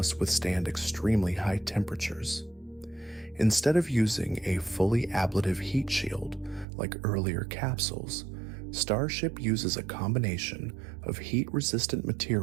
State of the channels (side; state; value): left; drops out; at 6.7 s